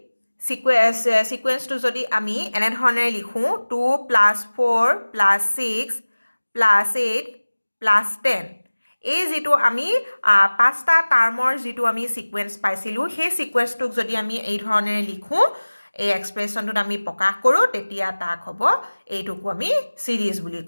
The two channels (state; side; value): inverted; both; correlation -1.00